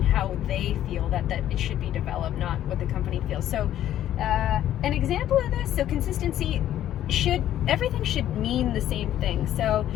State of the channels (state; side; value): quieter; right; 12.0 dB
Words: how they feel that it should be developed, not what the company feels. So an example of this, so consistency, everything should mean the same thing. So